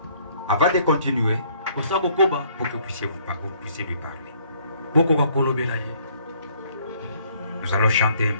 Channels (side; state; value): both; inverted; correlation -0.63